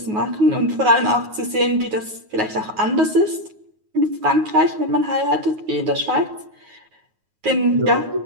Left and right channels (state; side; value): late; left; 9.5 ms